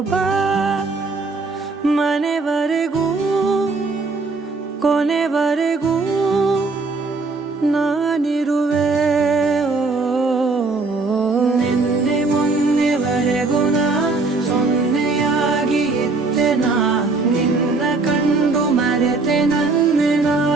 ಬಾ ಮನೆವರೆಗೂ ಕೊನೆವರೆಗೂ ನಾನಿರುವೆ ನಿನ್ನೆ ಮೊನ್ನೆವರೆಗೂ ನಾ ಸೊನ್ನೆಯಾಗಿ ಇದ್ದೆ ನಾ ನಿನ್ನ ಕಂಡು ಮರೆತೆ ನನ್ನೆನಾ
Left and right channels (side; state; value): left; quieter; 3.8 dB